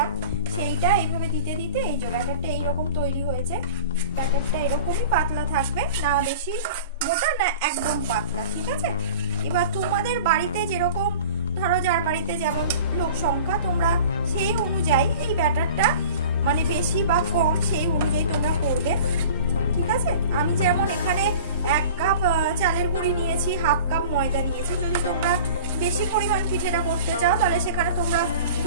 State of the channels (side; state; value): both; inverted; correlation -0.41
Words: সেইটা এইভাবে দিতে দিতে এই যে ব্যাটারটা এইরকম তৈরি হয়েছে। ব্যাটারটা এরকমই পাতলা থাকবে, না বেশি মোটা না একদম পাতলা, ঠিক আছে? এবার তোমাদের বাড়িতে যেরকম, ধরো যার বাড়িতে যেমন লোক সংখ্যা, তোমরা সেই অনুযায়ী এই ব্যাটারটা মানে বেশি বা কম সেই অনুযায়ী তোমরা করবে, ঠিক আছে? আমি যেমন এখানে 1 কাপ চালের গুঁড়ি নিয়েছি, 1/2 কাপ ময়দা নিয়েছি। যদি তোমরা বেশি পরিমাণ পিঠেটা করতে চাও তাহলে সেখানে তোমরা